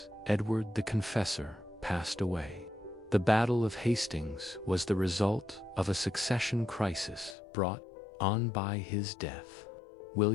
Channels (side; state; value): right; drops out; at 7.4 s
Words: Edward the Confessor passed away. The Battle of Hastings was the result of a succession crisis brought on by his death.